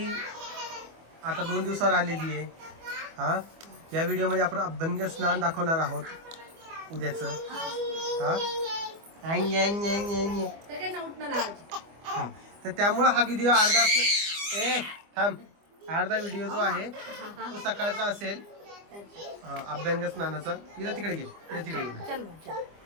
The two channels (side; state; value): left; late; 25 ms